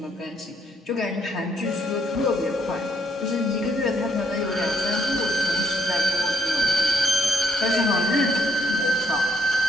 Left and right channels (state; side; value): normal; both; correlation 0.73